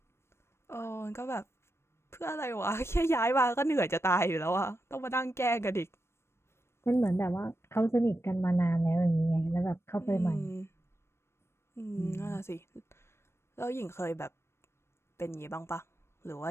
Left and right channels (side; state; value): right; late; 0.12 ms